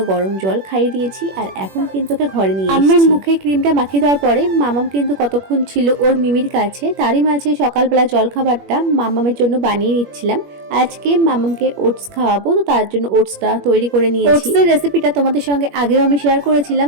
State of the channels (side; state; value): left; late; 21 ms